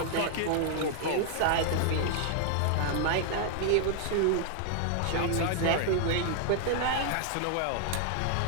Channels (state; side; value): different; both; correlation 0.00